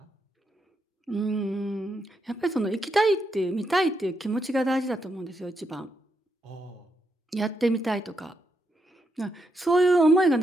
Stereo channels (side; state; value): both; normal; correlation 0.81